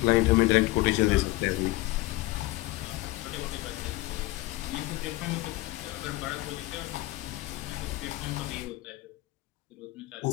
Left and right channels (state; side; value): quieter; right; 19.3 dB